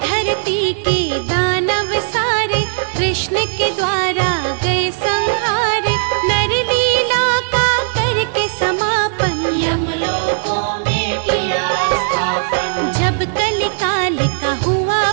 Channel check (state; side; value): silent; left; digital silence